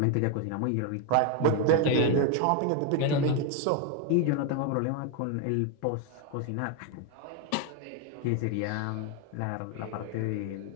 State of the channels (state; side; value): different; both; correlation 0.01